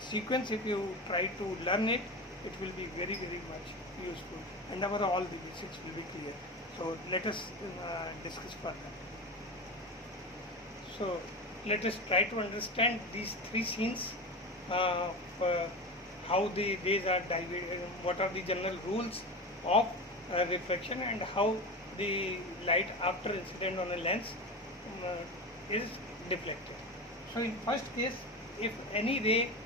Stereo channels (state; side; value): normal; both; correlation 0.25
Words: sequence if you try to learn it, it will be very much useful, and all the basics will be clear. So let us discuss further. So let us try to understand these three scenes, how the rays are divided, what are the general rules of reflection, and how the light after incident on a lens is deflected. So in first case, if any ray,